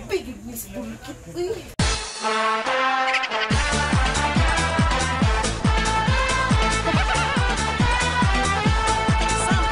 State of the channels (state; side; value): identical; both; correlation 1.00